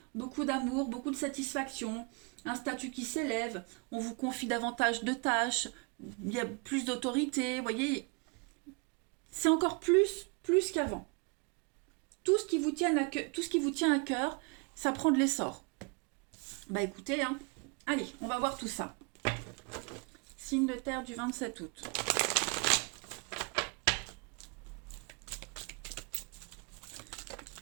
beaucoup d'amour, beaucoup de satisfaction, un statut qui s'élève, on vous confie davantage de tâches, il y a plus d'autorité, vous voyez, c'est encore plus qu'avant. Tout ce qui vous tient à cœur, ça prend de l'essor. Bah écoutez, hein, allez, on va voir tout ça. Signe de terre du 27 août.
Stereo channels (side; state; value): left; quieter; 32.3 dB